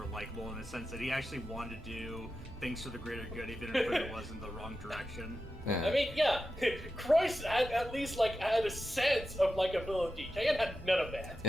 likable in the sense that he actually wanted to do things for the greater good, even if it was in the wrong direction. Yeah. I mean, yeah, Croix had at least had a sense of likability. Cayenne had none of that.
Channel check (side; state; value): both; normal; correlation 0.91